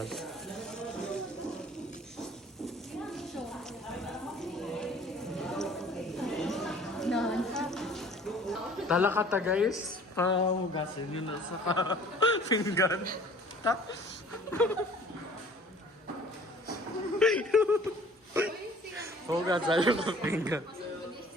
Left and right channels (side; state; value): both; normal; correlation 0.51